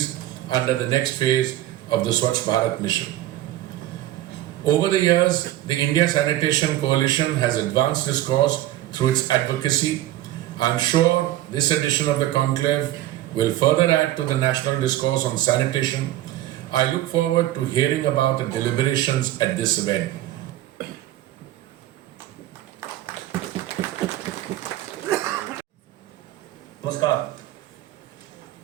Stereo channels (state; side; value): quieter; left; 14.5 dB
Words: under the next phase of the Swachh Bharat mission. Over the years, the India Sanitation Coalition has advanced this cause through its advocacy. I am sure this edition of the conclave will further add to the national discourse on sanitation. I look forward to hearing about the deliberations at this event. Namaskar.